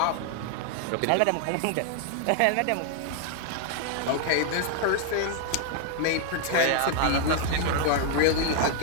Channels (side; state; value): both; different; correlation 0.00